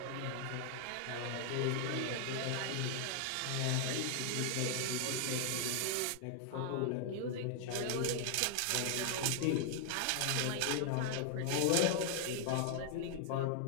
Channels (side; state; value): both; different; correlation 0.00